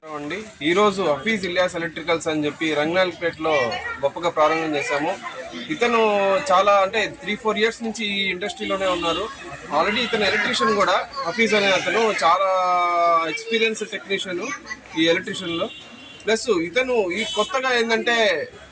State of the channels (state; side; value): identical; both; correlation 1.00